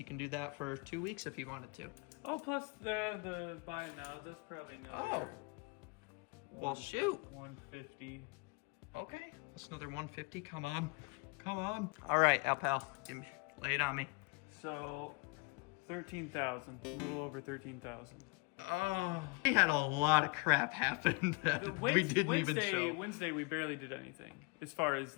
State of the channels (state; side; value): quieter; right; 29.9 dB